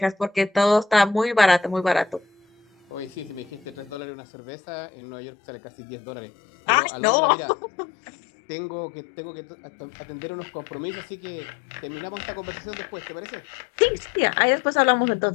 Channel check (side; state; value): right; drops out; at 4.0 s